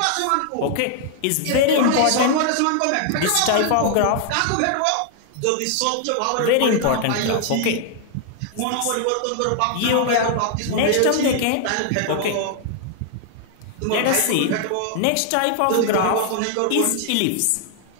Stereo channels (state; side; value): different; both; correlation 0.00